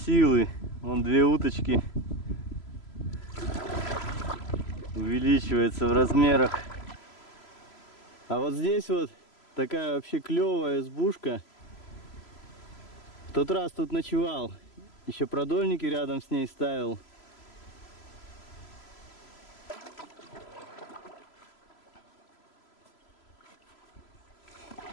Вон 2 уточки. Увеличивается в размерах. А вот здесь вот такая вообще клевая избушка. В тот раз тут ночевал. Еще продольники рядом с ней ставил.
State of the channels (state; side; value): late; right; 3.0 ms